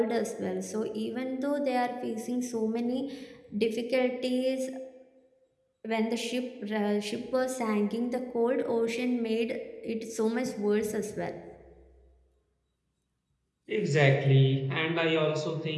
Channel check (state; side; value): identical; both; correlation 1.00